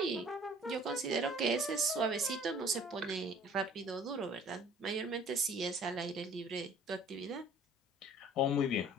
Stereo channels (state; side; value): normal; both; correlation 0.51